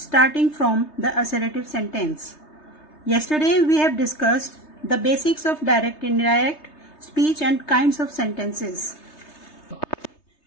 from the assertive sentence. Yesterday we have discussed the basics of direct, indirect speech and kinds of sentences,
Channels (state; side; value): late; right; 3.3 ms